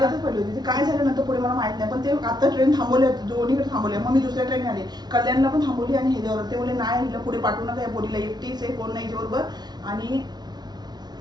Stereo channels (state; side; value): late; left; 0.20 ms